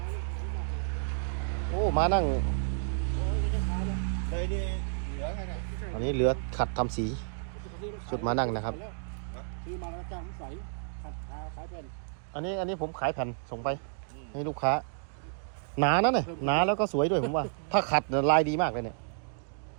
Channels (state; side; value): silent; left; digital silence